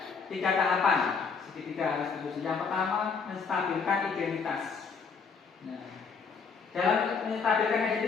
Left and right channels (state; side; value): quieter; right; 5.4 dB